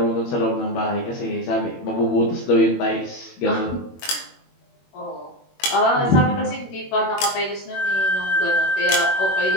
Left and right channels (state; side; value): late; right; 21 ms